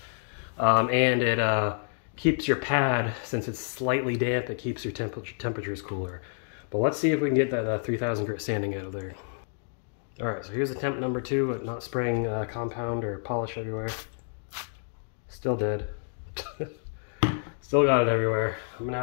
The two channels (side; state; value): right; silent; digital silence